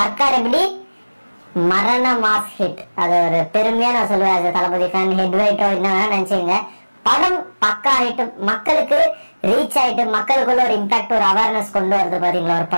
எப்படி மரண மாஸ் ஹிட், அது ஒரு பெருமையா நான் சொல்லுவேன். தளபதி ஃபேன் ஹெட் வெயிட்டோ என்ன நினைச்சீங்க, படம் பக்கா ஆயிட்டு மக்களுக்கு ரீச் ஆயிட்டு மக்களுக்குள்ள ஒரு இம்பாக்ட் ஒரு அவேர்னஸ் கொண்டு வருது பாத்தீங்களா ஒரு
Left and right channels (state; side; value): inverted; both; correlation -1.00